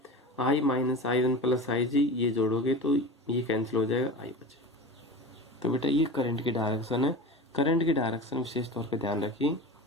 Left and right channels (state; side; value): normal; both; correlation 0.31